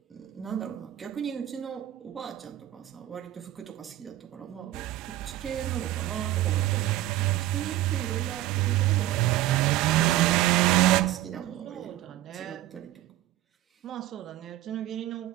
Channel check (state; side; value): quieter; left; 14.7 dB